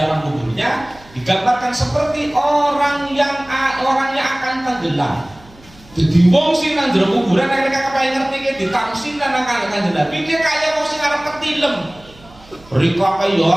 kuburnya digambarkan seperti orangnya akan tenggelam. Jadi wong sing nang jero kuburan mereka kepengen ngerti ki ditamsin nang Kanjeng Nabi ki kaya wong sing arep ketilem. Rika kaya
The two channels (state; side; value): noise; right; hum, 25 dB below the sound